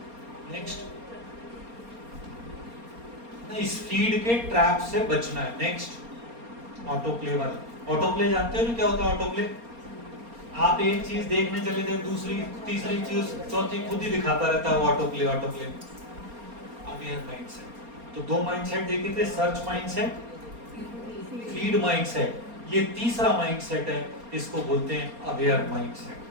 नेक्स्ट, इस फीड के ट्रैप से बचना है। नेक्स्ट, ऑटो प्ले वाला। ऑटो प्ले जानते हो क्या होता है? ऑटो प्ले, आप एक चीज देखने चले थे, दूसरी तीसरी चीज चौथी खुद ही दिखाता रहता है, auto play. Auto play aware mindset. तो दो माइंडसेट देखे थे, सर्च माइंडसेट, फीड माइंडसेट। ये तीसरा माइंडसेट है, इसको बोलते हैं अवेयर माइंडसेट।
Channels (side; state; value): left; late; 4.3 ms